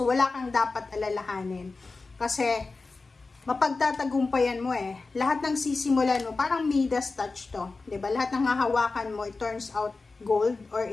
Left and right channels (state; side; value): quieter; right; 3.8 dB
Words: wala kang dapat alalahanin. Kasi, mapagtatagumpayan mo eh. Lahat ng sisimulan mo, parang Midas touch to. Diba? Lahat ng hahawakan mo, it turns out gold, or